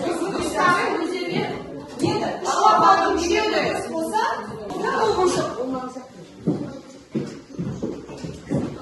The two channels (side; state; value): both; identical; correlation 1.00